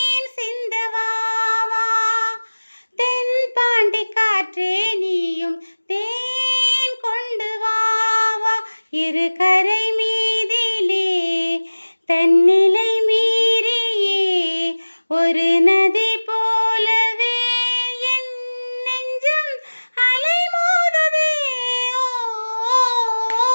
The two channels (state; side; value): inverted; both; correlation -1.00